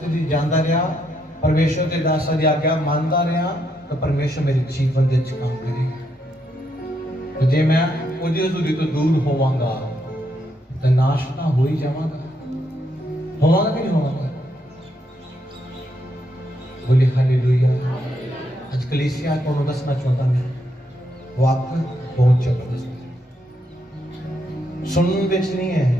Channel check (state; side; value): normal; both; correlation 0.78